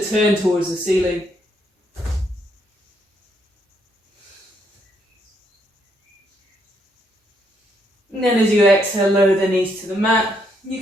turn towards the ceiling. And then as you exhale, lower the knees to the mat.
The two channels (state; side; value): normal; both; correlation 0.74